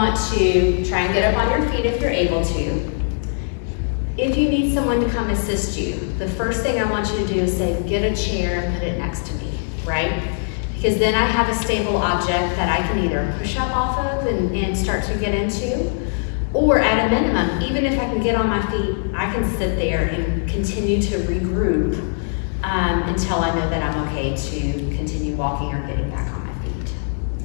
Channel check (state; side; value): silent; right; digital silence